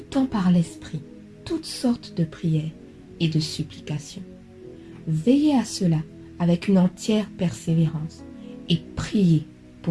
par l'Esprit toutes sortes de prières et de supplications. Veillez à cela avec une entière persévérance et priez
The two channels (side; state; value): both; identical; correlation 1.00